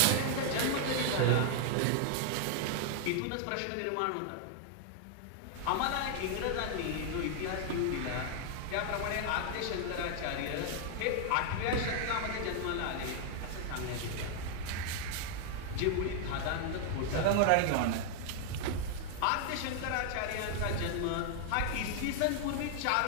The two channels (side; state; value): both; different; correlation 0.00